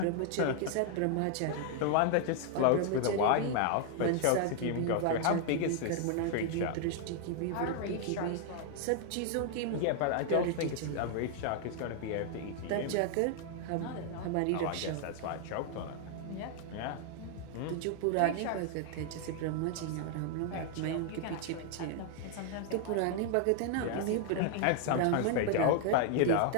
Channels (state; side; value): different; both; correlation 0.00